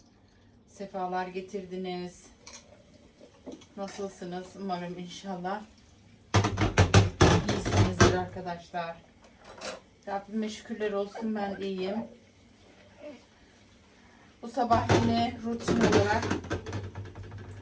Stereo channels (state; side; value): identical; both; correlation 1.00